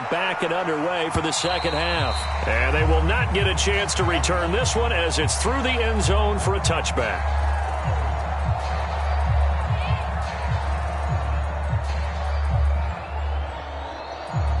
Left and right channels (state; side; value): identical; both; correlation 1.00